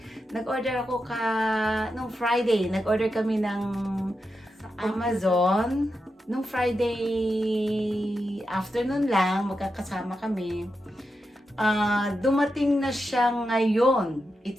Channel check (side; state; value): both; normal; correlation 0.88